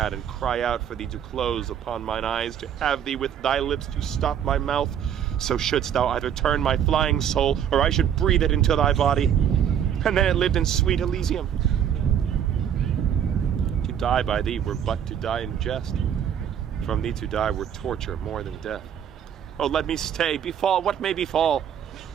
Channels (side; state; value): left; quieter; 9.0 dB